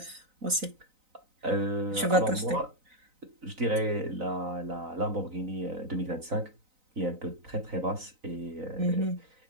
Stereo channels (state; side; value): late; left; 3.9 ms